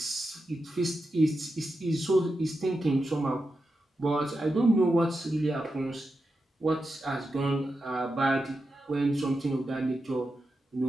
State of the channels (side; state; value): both; normal; correlation 0.89